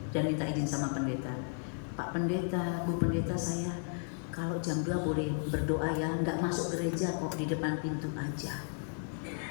dan minta izin sama pendeta. Pak Pendeta, Bu Pendeta, saya kalau jam 2 boleh berdoa ya, nggak masuk gereja kok, di depan pintu aja.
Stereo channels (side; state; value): right; silent; 55 dB below the other